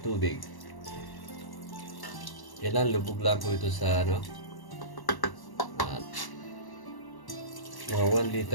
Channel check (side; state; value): right; late; 1.1 ms